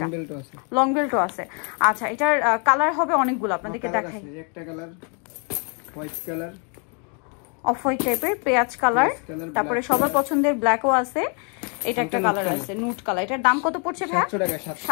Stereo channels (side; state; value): right; quieter; 37.6 dB